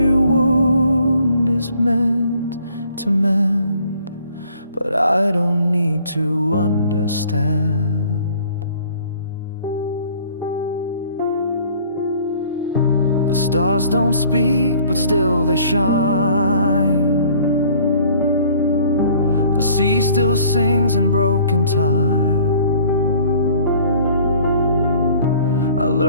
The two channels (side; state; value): both; inverted; correlation -0.55